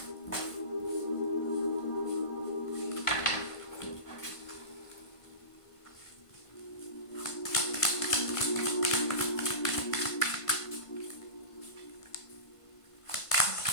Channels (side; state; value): right; late; 1.5 ms